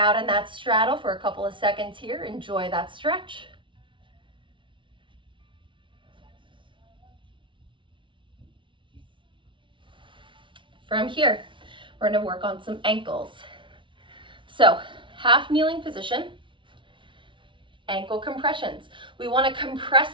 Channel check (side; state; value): left; late; 0.24 ms